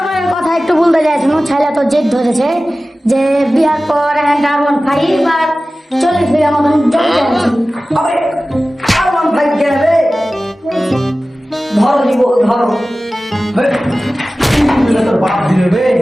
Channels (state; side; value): normal; both; correlation 0.96